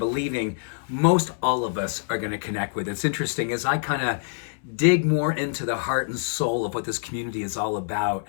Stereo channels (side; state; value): right; silent; 61 dB below the other